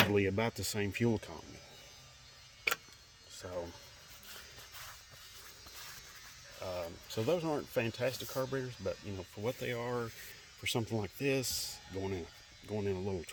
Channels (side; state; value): both; identical; correlation 1.00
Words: about the same fuel economy. So those aren't fantastic carburetors, but you know, for what they are, for something like this, going in a little